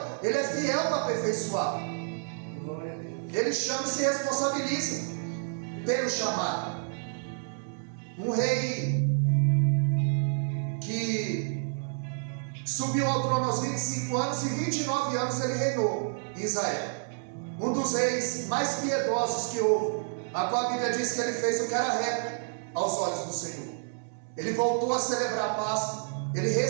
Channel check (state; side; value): silent; left; digital silence